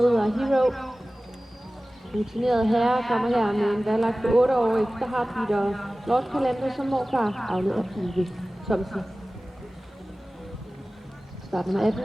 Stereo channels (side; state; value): both; normal; correlation 0.97